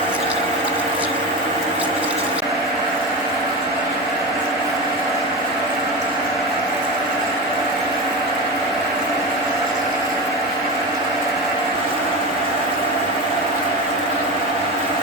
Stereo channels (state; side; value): normal; both; correlation 0.23